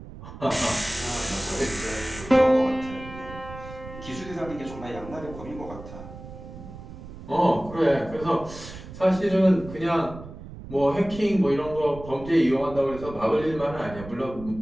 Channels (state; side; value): noise; right; rumble, 14 dB below the sound